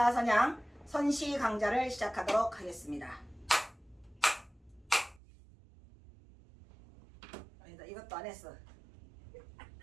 선양 선시 강좌를 시작하도록 하겠습니다. 아니다, 이것도 안 했어.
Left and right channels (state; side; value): drops out; left; at 5.2 s